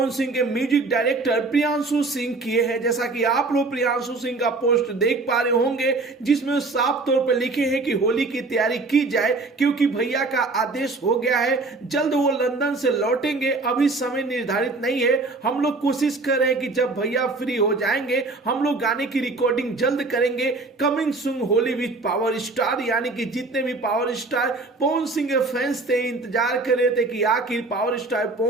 सिंह के म्यूजिक डायरेक्टर प्रियांशु सिंह किए हैं। जैसा कि आप लोग प्रियांशु सिंह का पोस्ट देख पा रहे होंगे, जिसमें साफ तौर पर लिखे हैं कि होली की तैयारी की जाए, क्योंकि भैया का आदेश हो गया है। जल्द वो लंदन से लौटेंगे, अभी समय निर्धारित नहीं है। हम लोग कोशिश कर रहे हैं कि जब भैया फ्री हो जाएंगे हम लोग गाने की रिकॉर्डिंग जल्द करेंगे। Coming soon Holi with power star, यानी कि जितने भी पावर स्टार पवन सिंह के फैंस थे, इंतजार कर रहे थे कि आखिर पावर स्टार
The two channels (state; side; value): quieter; left; 3.4 dB